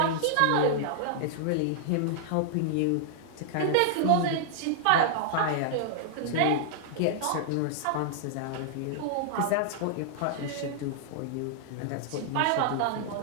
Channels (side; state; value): both; different; correlation -0.01